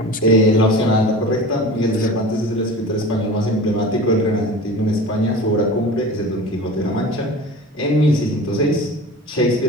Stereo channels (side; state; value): both; normal; correlation 0.36